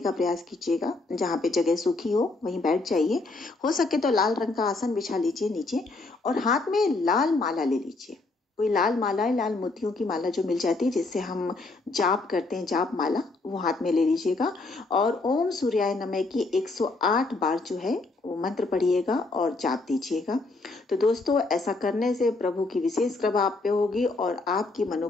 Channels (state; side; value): quieter; right; 3.4 dB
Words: का प्रयास कीजिएगा। जहां पे जगह सूखी हो वहीं बैठ जाइए। हो सके तो लाल रंग का आसन बिछा लीजिए नीचे और हाथ में लाल माला ले लीजिए। कोई लाल माला, लाल मोतियों की माला जो मिल जाती है जिससे हम जाप करते हैं, जाप माला, वो हाथ में ले लीजिएगा और ओम सूर्याय नमः की 108 बार जो है वो मंत्र पढ़िएगा और जाप दीजिएगा। तो दोस्तों, ऐसा करने से प्रभु की विशेष कृपा आप पे होगी और आपकी